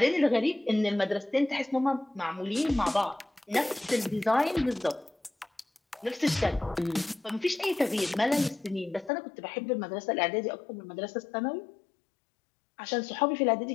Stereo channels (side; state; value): right; drops out; at 9.1 s